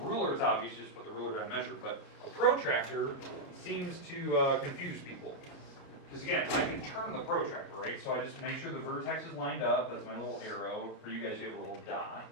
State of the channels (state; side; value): late; right; 29 ms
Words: it's obvious, just put the ruler down and measure, but a protractor seems to confuse people. Because again, I can turn the protractor, right? So I just make sure the vertex is lined up, that's my little arrow. For you guys, you have a little dot.